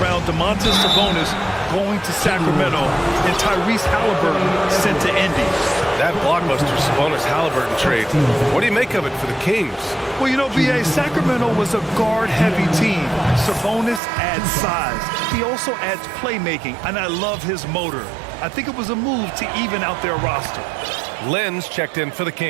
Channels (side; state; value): left; drops out; at 14.0 s